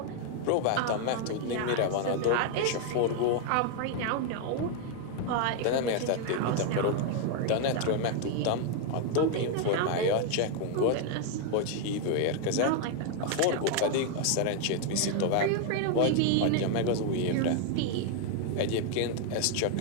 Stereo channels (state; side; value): different; both; correlation 0.00